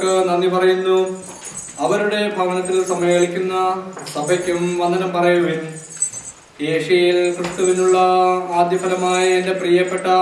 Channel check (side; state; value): both; identical; correlation 1.00